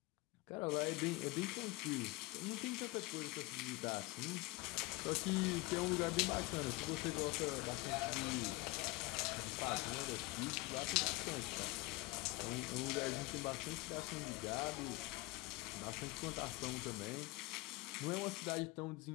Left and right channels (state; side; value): quieter; right; 22.0 dB